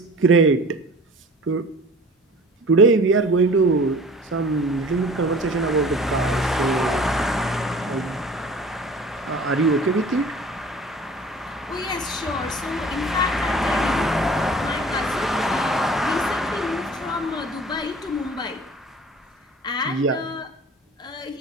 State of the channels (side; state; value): both; normal; correlation 0.45